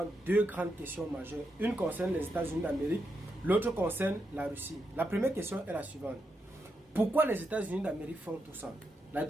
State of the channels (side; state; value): both; normal; correlation 0.84